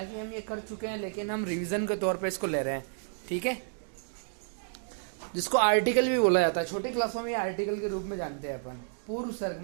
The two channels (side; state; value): left; silent; digital silence